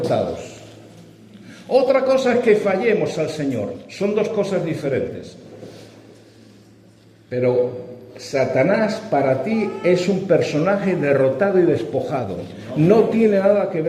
Otra cosa es que fallemos al Señor. Son dos cosas diferentes. Pero Satanás para ti es un personaje derrotado y despojado. No tiene nada que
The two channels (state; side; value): identical; both; correlation 1.00